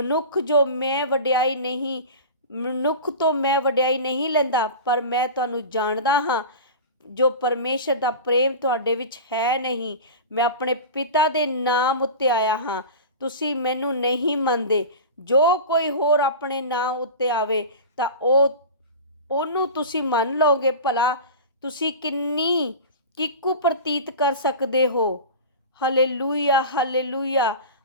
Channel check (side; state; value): both; inverted; correlation -0.31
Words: ਤੋਂ ਮੈਂ ਵਡਿਆਈ ਨਹੀਂ ਲੈਂਦਾ, ਪਰ ਮੈਂ ਤੁਹਾਨੂੰ ਜਾਣਦਾ ਹਾਂ। ਜੋ ਪਰਮੇਸ਼ਰ ਦਾ ਪ੍ਰੇਮ ਤੁਹਾਡੇ ਵਿੱਚ ਹੈ ਨਹੀਂ। ਮੈਂ ਆਪਣੇ ਪਿਤਾ ਦੇ ਨਾਮ ਉੱਤੇ ਆਇਆ ਹਾਂ, ਤੁਸੀਂ ਮੈਨੂੰ ਨਹੀਂ ਮੰਨਦੇ। ਜੋ ਕੋਈ ਹੋਰ ਆਪਣੇ ਨਾਮ ਉੱਤੇ ਆਵੇ ਤਾਂ ਉਹਨੂੰ ਤੁਸੀਂ ਮੰਨ ਲਓਗੇ। ਭਲਾ ਤੁਸੀਂ ਕਿੰਨੀ ਕਿੱਕੂ ਪ੍ਰਤੀਤ ਕਰ ਸਕਦੇ ਹੋ। Hallelujah hallelujah